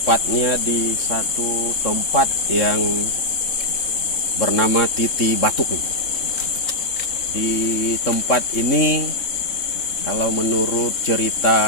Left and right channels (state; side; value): late; right; 3.7 ms